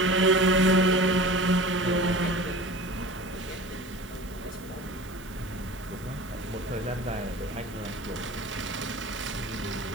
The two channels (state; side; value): noise; right; hiss, 22 dB below the sound